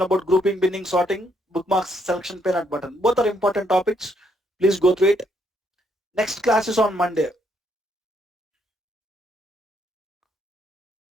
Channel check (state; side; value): normal; both; correlation 0.73